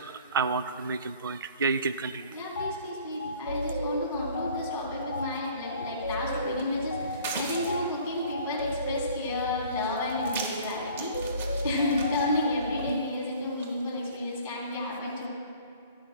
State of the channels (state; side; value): inverted; both; correlation -0.51